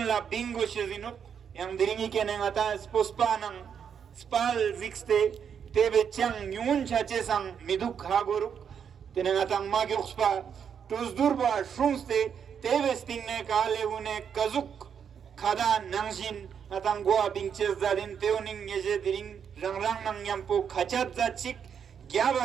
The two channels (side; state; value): left; quieter; 7.6 dB